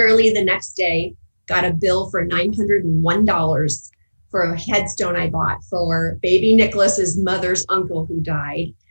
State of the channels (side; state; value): both; inverted; correlation -1.00